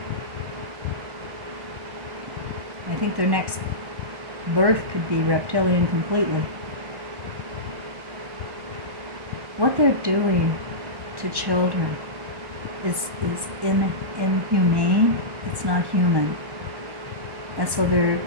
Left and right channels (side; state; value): left; late; 1.1 ms